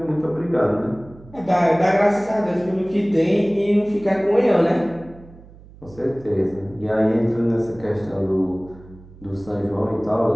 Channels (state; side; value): noise; right; hum, 21 dB below the sound